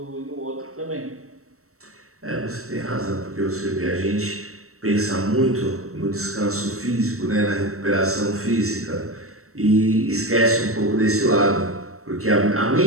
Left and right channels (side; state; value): left; late; 0.64 ms